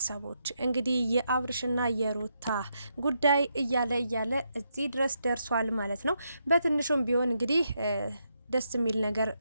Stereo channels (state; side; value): inverted; both; correlation -0.81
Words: እንግዲህ የአብርሽና የሩታ ጉዳይ እያለ እዚህ ድረስ ደርሷል ማለት ነው። በትንሹም ቢሆን እንግዲህ ደስ የሚል ነገር